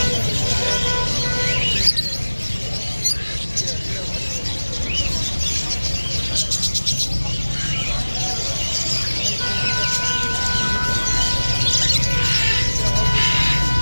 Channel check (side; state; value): both; inverted; correlation -1.00